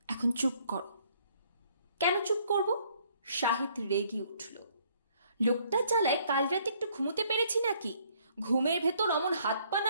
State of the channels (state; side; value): inverted; both; correlation -0.64